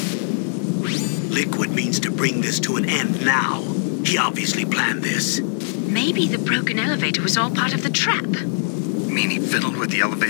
Liquid means to bring this to an end now. He obviously planned this. Maybe the broken elevator was all part of the trap. You mean he fiddled with the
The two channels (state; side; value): silent; right; digital silence